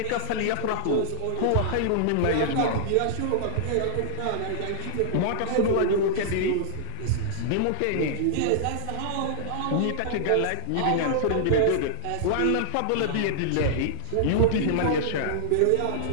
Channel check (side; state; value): both; different; correlation -0.01